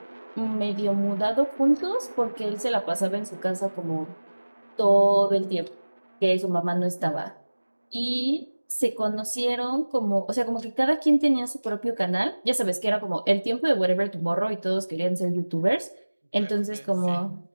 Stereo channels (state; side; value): inverted; both; correlation -1.00